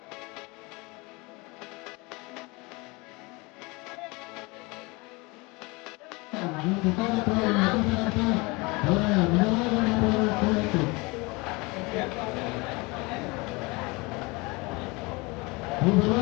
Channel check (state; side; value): quieter; right; 25.6 dB